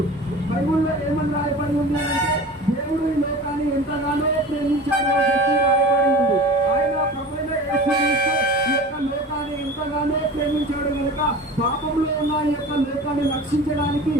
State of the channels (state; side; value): normal; both; correlation 0.37